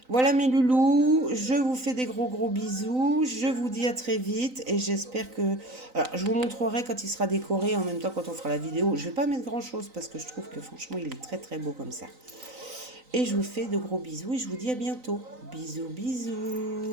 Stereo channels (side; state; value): left; late; 3.9 ms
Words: Voilà mes loulous, je vous fais des gros bisous, je vous dis à très vite et j'espère que... Alors, je vous montrerai quand il sera décoré, en même temps quand on fera la vidéo. Je ne vais pas mettre grand chose parce que je trouve que franchement il est très beau comme ça. Et je vous fais de gros bisous et je vous dis à bientôt.